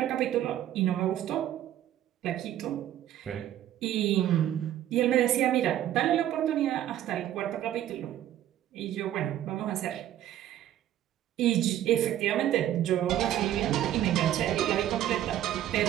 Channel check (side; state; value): left; quieter; 12.1 dB